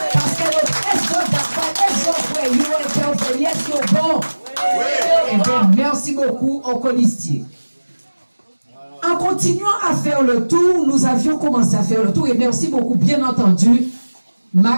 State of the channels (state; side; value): inverted; both; correlation -1.00